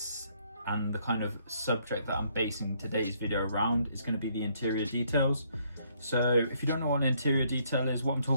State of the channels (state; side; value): inverted; both; correlation -0.69